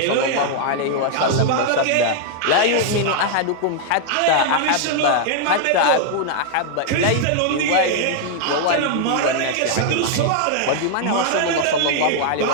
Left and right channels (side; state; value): both; different; correlation 0.00